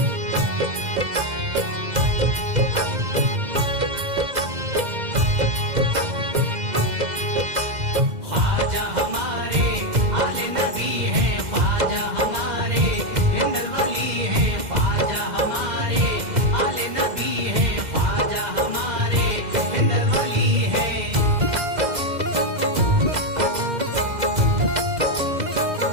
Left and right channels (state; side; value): late; left; 2.0 ms